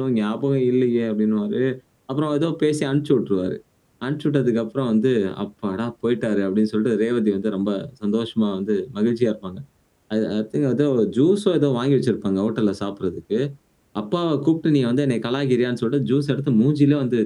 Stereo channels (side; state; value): both; identical; correlation 1.00